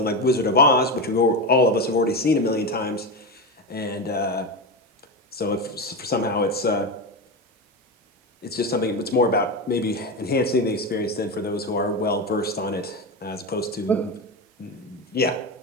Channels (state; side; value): normal; both; correlation 0.17